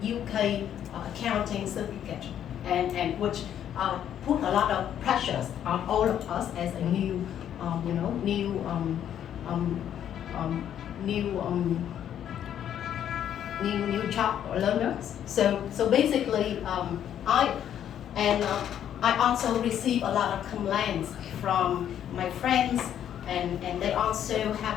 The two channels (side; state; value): right; quieter; 10.0 dB